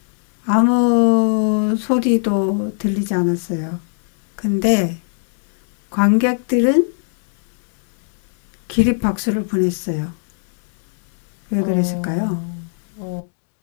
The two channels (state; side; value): silent; right; digital silence